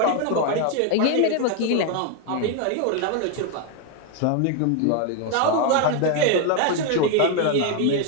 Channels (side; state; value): both; different; correlation 0.01